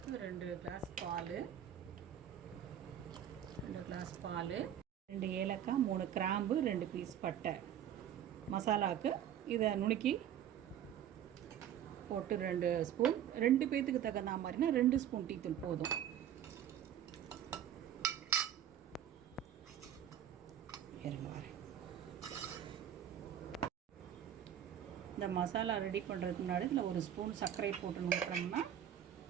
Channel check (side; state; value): left; quieter; 10.1 dB